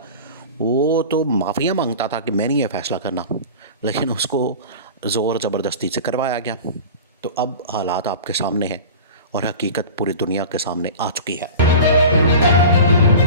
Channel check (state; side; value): inverted; both; correlation -0.35